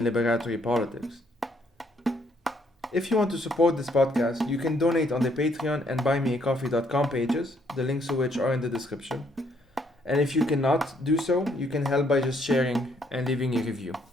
liberatory politics. If you want to support this podcast, you can donate on the Patreon and buymeacoffee.com pages, the links to which are in the description. And if you cannot do so, you can help by just sharing and leaving a review.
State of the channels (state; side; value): normal; both; correlation 0.69